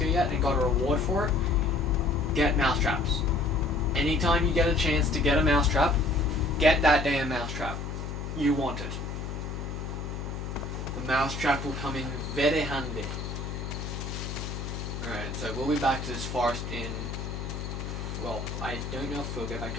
yet and got a reward for it, get mousetraps. Anytime you get a chance to get a mousetrap, get that damn mousetrap. You want it. The mousetrap will come in very handy. Alright, so we'll be back to this forest in... Well, I don't know if we'll get back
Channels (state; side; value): noise; left; hum, 6 dB below the sound